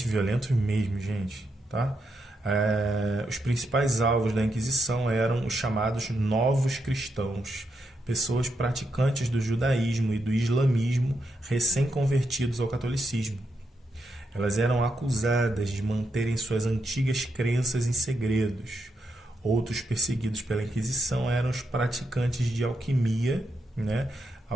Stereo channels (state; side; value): normal; both; correlation 0.83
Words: mesmo, gente, tá? Os principais alvos da Inquisição eram os chamados novos cristãos, pessoas praticantes do judaísmo e do islamismo recém-convertidos ao catolicismo. Elas eram acusadas de manterem suas antigas crenças em segredos. Outros perseguidos pela Inquisição eram os praticantes de alquimia, né?